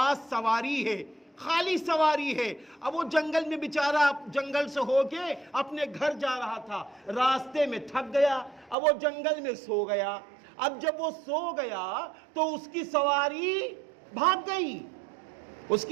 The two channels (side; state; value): left; drops out; at 8.8 s